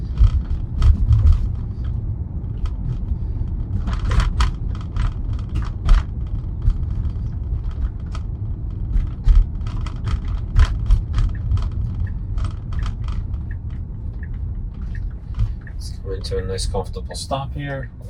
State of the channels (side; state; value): both; identical; correlation 1.00